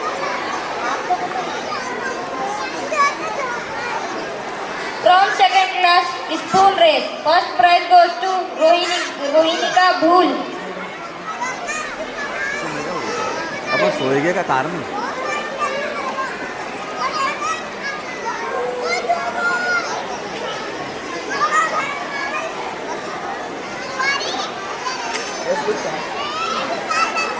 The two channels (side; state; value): both; identical; correlation 1.00